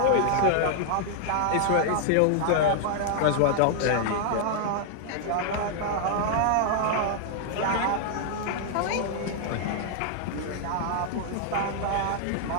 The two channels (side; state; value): both; different; correlation 0.00